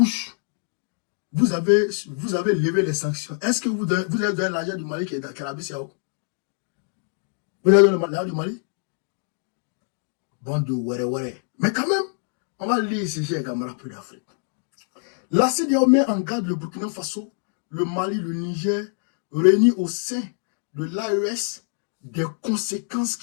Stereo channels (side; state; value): right; silent; 58 dB below the other